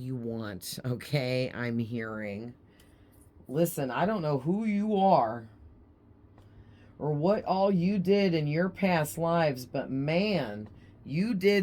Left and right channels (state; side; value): identical; both; correlation 1.00